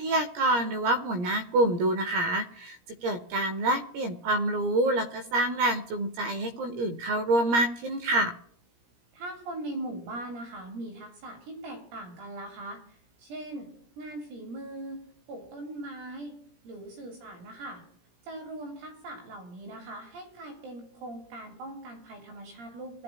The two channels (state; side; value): late; left; 17 ms